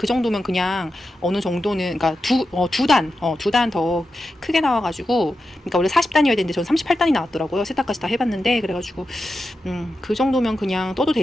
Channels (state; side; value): normal; both; correlation 0.90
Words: 정도면 그냥 어느 정도는 그러니까 두 단 더 크게 나와가지고 그러니까 원래 40단이어야 되는데 저는 38단이 나왔더라고요. 세탁까지 다 해봤는데 그래가지고 그 정도면 그냥 떠도